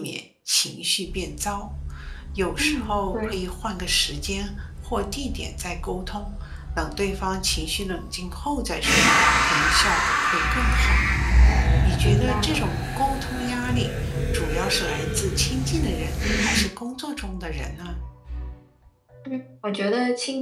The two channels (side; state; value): both; identical; correlation 1.00